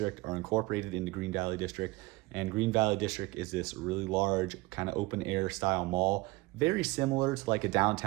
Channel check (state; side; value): quieter; left; 22.0 dB